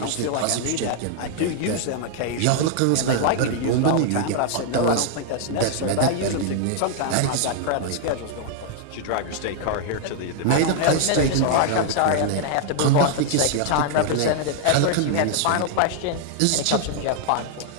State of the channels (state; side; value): different; both; correlation 0.00